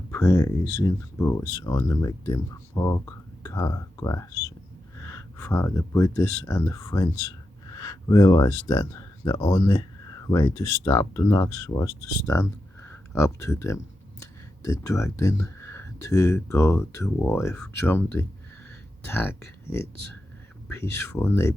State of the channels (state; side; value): normal; both; correlation 0.89